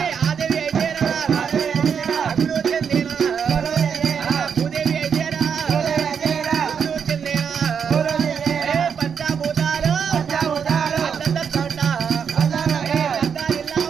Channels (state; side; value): quieter; left; 7.0 dB